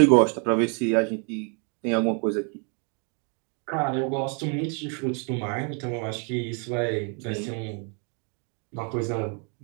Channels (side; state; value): left; quieter; 38.2 dB